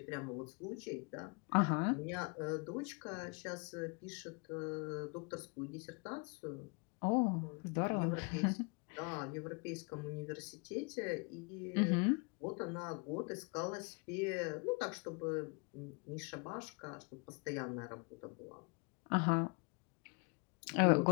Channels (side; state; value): right; quieter; 33.5 dB